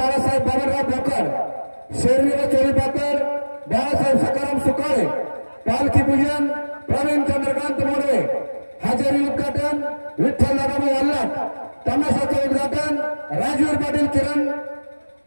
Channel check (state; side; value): inverted; both; correlation -1.00